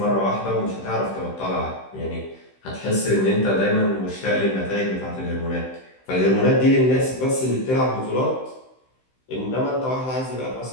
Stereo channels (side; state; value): right; late; 15 ms